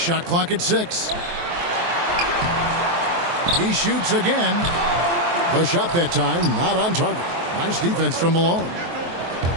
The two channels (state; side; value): late; left; 23 ms